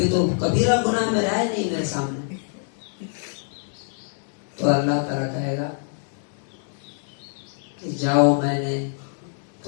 تو کبیرہ گناہ میرا ہے نہیں میرے سامنے۔ تو اللہ تعالیٰ کہے گا کہ جاؤ، میں نے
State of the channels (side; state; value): right; silent; 62 dB below the other